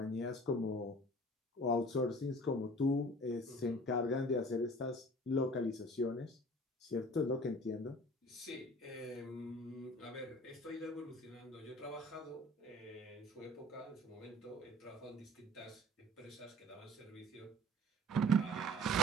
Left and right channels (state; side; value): normal; both; correlation 0.46